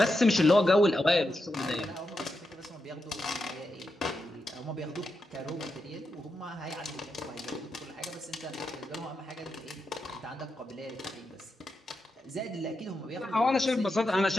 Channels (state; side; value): normal; both; correlation 0.87